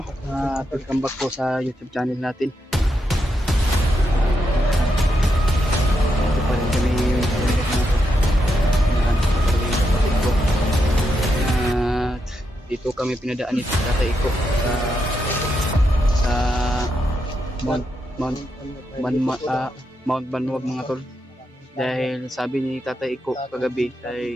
Welcome back po sa YouTube channel natin. Ito pa rin kami yung at dito kami pinadaan ni Tatay Iko sa Mount Banwag mga tol. Dahil sabi ni Tatay Iko kagabi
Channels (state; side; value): normal; both; correlation 0.83